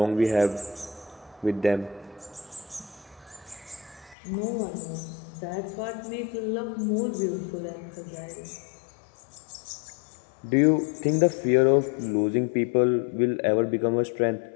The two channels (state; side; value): drops out; right; at 4.2 s